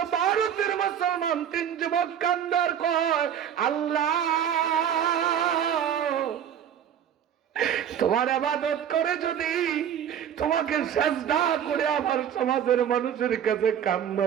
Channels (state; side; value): quieter; left; 9.3 dB